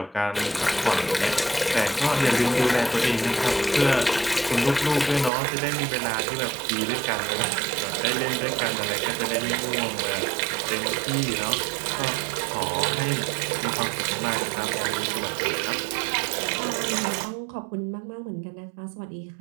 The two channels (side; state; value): left; drops out; at 5.3 s